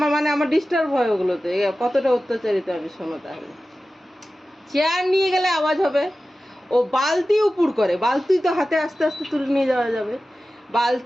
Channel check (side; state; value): both; normal; correlation 0.95